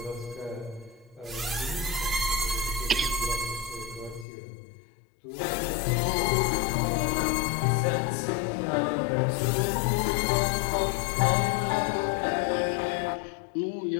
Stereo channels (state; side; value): drops out; right; at 4.2 s